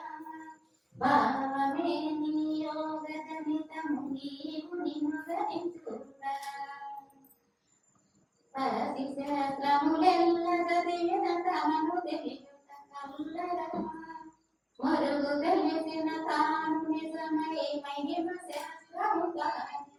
భావమే నీ యోగజనితము నీవు నిముగరించురా. పరది శాస్త్రములెల్ల చదివిన తనను తెలియుట కల్లరా. మరుగు తెలిసిన తాను నిజమై మహిమ శాస్త్రము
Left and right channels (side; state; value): both; identical; correlation 1.00